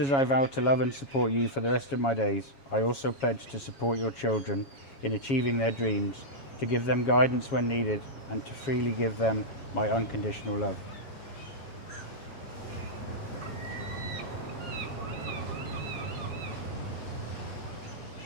I vow to love and support you for the rest of my days, I also pledge to support your children in achieving their dreams, to give them guidance when needed, and to freely give them my unconditional love.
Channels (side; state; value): right; late; 7.3 ms